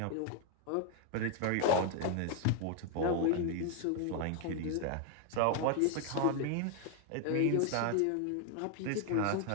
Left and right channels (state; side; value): different; both; correlation 0.01